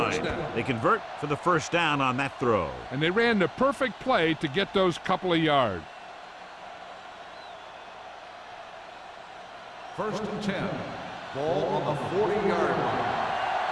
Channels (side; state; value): both; identical; correlation 1.00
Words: They convert for the first down on that throw. And they ran the perfect play to get those couple of yards. First and 10. Ball on the 40-yard line.